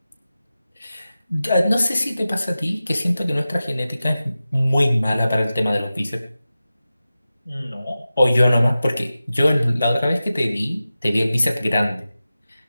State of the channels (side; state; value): both; inverted; correlation -0.95